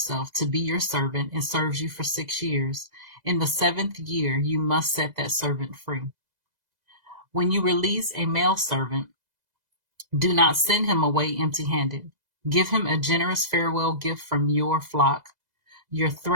to be your servant and serves you for 6 years, in the 7th year you must set that servant free. When you release a male servant, do not send him away empty-handed. Give him a generous farewell gift from your flock, your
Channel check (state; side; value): late; left; 2.0 ms